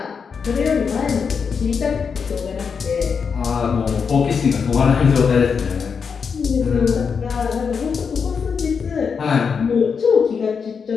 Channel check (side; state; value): right; quieter; 6.0 dB